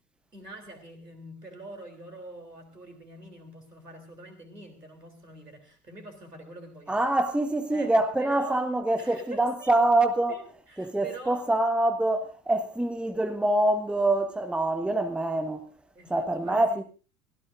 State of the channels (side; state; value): both; normal; correlation 0.81